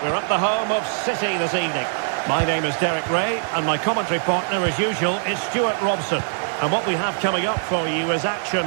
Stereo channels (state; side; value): silent; left; digital silence